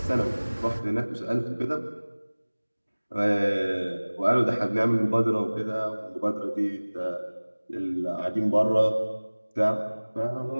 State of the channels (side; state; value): both; inverted; correlation -1.00